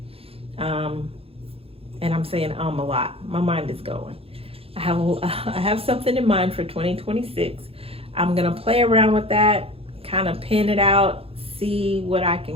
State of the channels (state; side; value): late; left; 0.28 ms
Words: And I'm saying a lot. My mind is going. I have something in mind for 2026. I'm going to play around with that, kind of pin it out, see what I